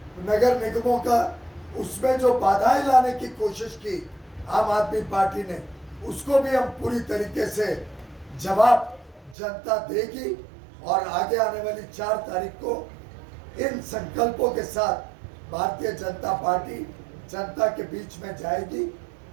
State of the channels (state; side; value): drops out; left; at 9.3 s